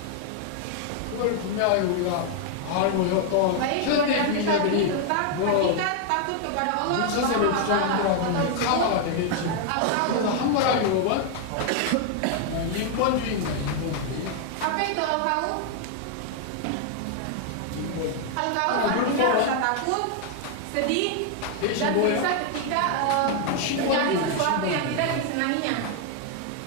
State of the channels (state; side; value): different; both; correlation 0.00